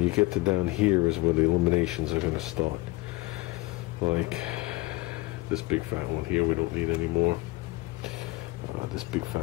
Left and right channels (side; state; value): right; quieter; 21.3 dB